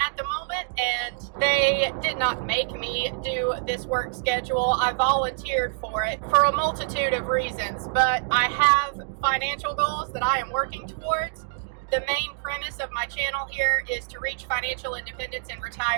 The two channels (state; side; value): silent; left; digital silence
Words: the moment, and they did not make me do this work schedule. I volunteered for it for a multitude of reasons, but I have financial goals that I am working towards. The main premise of my channel here is to reach financial independence and